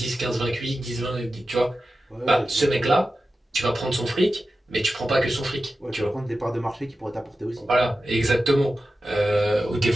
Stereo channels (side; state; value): both; normal; correlation 0.93